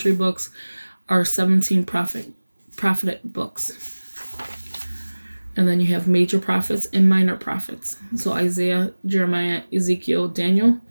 books are 17 prophetic books. And then you have major prophets and minor prophets. So Isaiah, Jeremiah, Ezekiel, Daniel.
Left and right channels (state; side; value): inverted; both; correlation -1.00